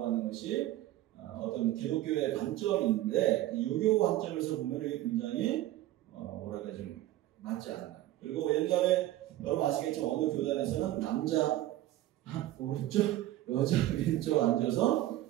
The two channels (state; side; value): quieter; left; 14.8 dB